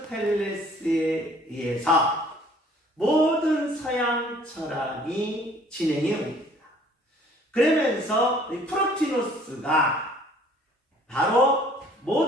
의해서 모든 서양 철학이 진행해 옵니다. 그러면서 프로티노스가 바로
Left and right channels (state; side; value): normal; both; correlation 0.56